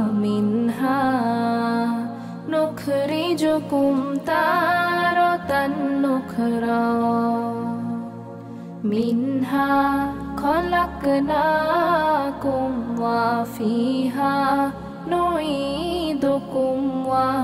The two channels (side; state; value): both; identical; correlation 1.00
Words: মিনহা নুখরিজুকুম তারাতান নুখরা। মিনহা খলাকনাকুম ওয়া ফিহা নুঈদুকুম ওয়া